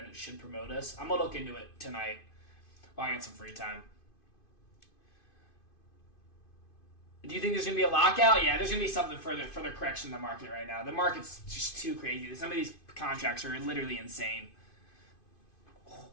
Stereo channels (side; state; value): right; late; 2.5 ms